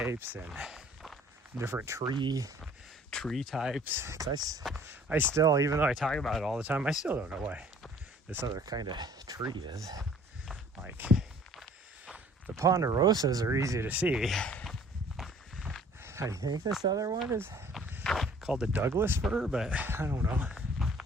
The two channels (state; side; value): normal; both; correlation 0.54